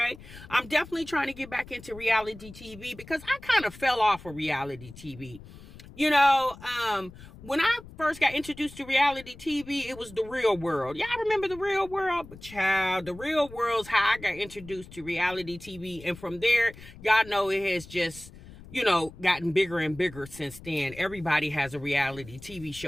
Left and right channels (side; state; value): left; noise; rumble, 18 dB below the sound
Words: I'm definitely trying to get back into reality TV because I kind of fell off of reality TV. When I first got introduced to reality TV, it was The Real World. Y'all remember The Real World? But child, The Real World's how I got introduced to reality TV. And from there, y'all know it has just, gotten bigger and bigger since then. Everybody has a reality TV